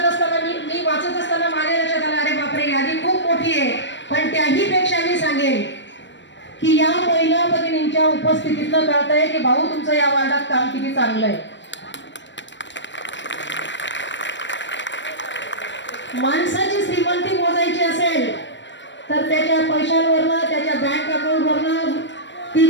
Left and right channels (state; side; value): late; right; 0.53 ms